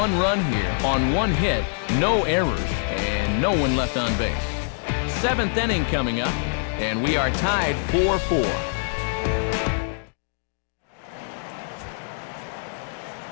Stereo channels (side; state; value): right; silent; digital silence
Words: run here on 1 hit, no errors, and no one left on base. 7th inning coming up, and we are tied 4-4.